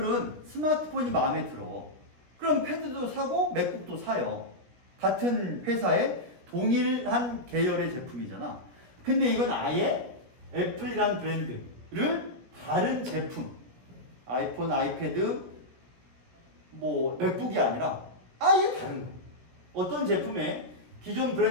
스마트폰이 마음에 들어. 그럼 패드도 사고 맥북도 사요. 같은 회사의 동일한 계열의 제품이잖아. 근데 이건 아예 애플이란 브랜드를 다른 제품, 아이폰, 아이패드, 맥북이 아니라 아예 다른 거. 어떤 제품에 기존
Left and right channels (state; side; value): late; left; 17 ms